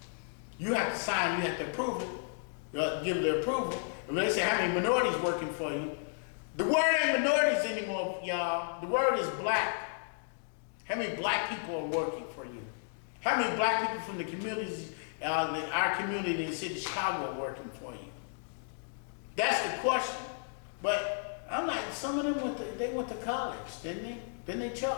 You have to sign, you have to approve it, give the approval. And when they say how many minorities working for you, the word ain't minorities anymore, y'all. The word is black. How many black people are working for you? How many black people from the communities, our community in the city of Chicago are working for you? That's the question. But I'm like, some of them went to college, didn't they? Didn't they,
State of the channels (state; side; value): silent; right; digital silence